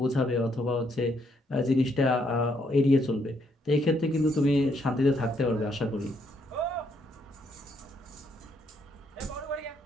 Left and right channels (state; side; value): normal; both; correlation 0.73